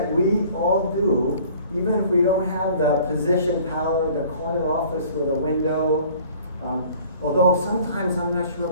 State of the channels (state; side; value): inverted; both; correlation -0.51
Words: we all do, even if we don't have the position power, the corner office with a window, although sometimes I'm not sure